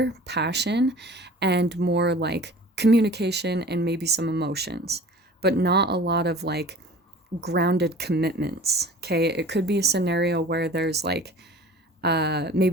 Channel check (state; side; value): normal; both; correlation 0.43